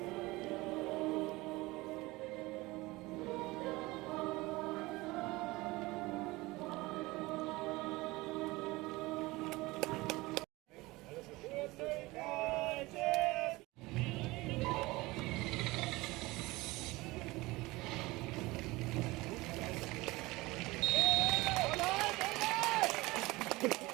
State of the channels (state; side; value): quieter; left; 21.2 dB